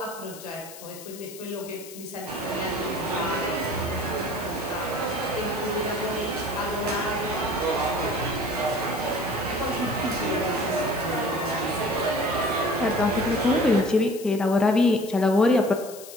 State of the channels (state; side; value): noise; left; hiss, 15 dB below the sound